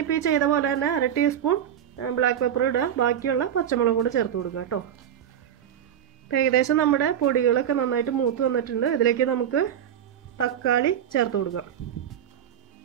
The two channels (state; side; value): quieter; left; 9.6 dB